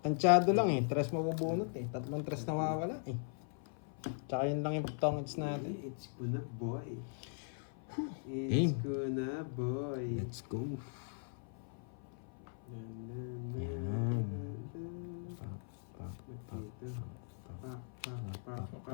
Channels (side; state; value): right; silent; 52 dB below the other